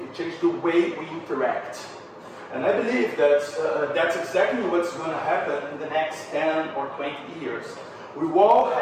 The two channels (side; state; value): both; identical; correlation 1.00